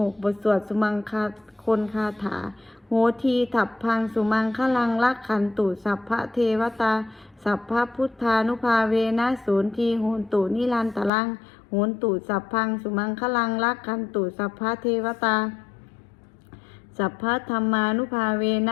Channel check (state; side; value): drops out; right; at 11.1 s